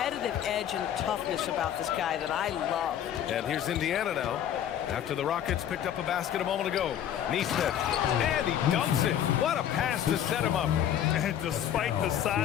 edge and toughness about this guy that I love. And here's Indiana now. After the Rockets picked up a basket a moment ago. Nesmith, and he dunks it. What a pass to set him up. And despite the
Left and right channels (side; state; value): right; quieter; 10.2 dB